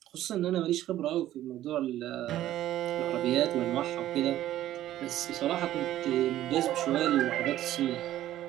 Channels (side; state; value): left; quieter; 13.4 dB